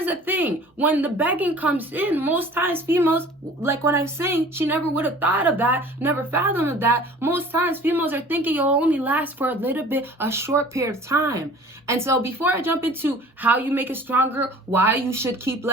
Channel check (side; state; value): both; normal; correlation 0.46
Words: the thing. When the begging comes in, most times females, like what I'm saying, she never would have thought of that, never fathomed of that. Most times females are thinking it'll only last for a little bit, a short period of time. And so before I jump into how you make it stronger, why you should keep